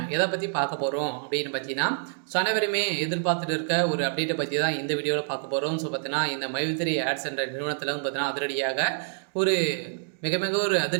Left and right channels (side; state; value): left; silent; digital silence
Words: எதை பற்றி பார்க்க போகிறோம் அப்படின்னு பார்த்தீங்கன்னா, அனைவருமே எதிர்பார்த்துட்டு இருக்க ஒரு அப்டேட்டை பற்றி தான் இந்த வீடியோவில் பார்க்க போகிறோம். ஸோ பார்த்தீங்கன்னா, இந்த மைத்ரி ஆட்ஸ் என்ற நிறுவனத்தில் பார்த்தீங்கன்னா அதிரடியாக ஒரு மிக மிக ஒரு